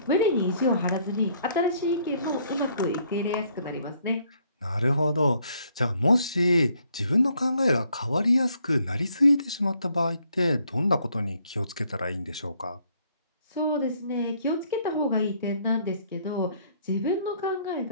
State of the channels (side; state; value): both; inverted; correlation -0.67